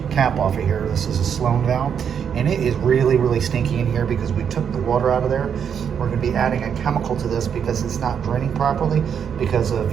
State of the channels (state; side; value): quieter; left; 7.7 dB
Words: cap off of here. This is a Sloan valve, and it is really stinky in here because we took the water out of there. We're going to be adding a chemical to this because it's not draining properly because of